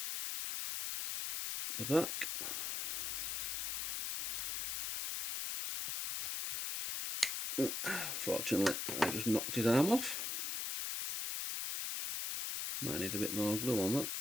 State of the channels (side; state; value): left; noise; hiss, 1 dB below the sound